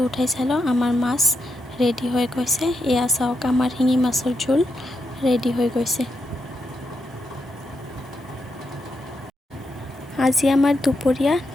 উঠাই চালোঁ, আমাৰ মাছ ৰেডি হৈ গৈছে। এয়া চাওক, আমাৰ শিঙি মাছৰ জোল ৰেডি হৈ গৈছে। আজি আমাৰ দুপৰীয়া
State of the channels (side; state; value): both; normal; correlation 0.83